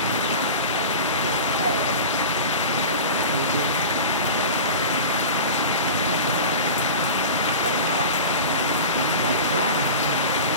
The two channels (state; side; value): inverted; both; correlation -0.32